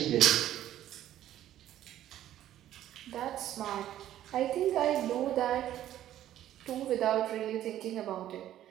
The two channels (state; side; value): quieter; left; 12.4 dB